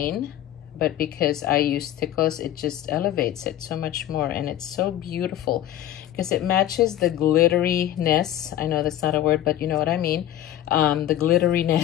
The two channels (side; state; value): right; quieter; 12.3 dB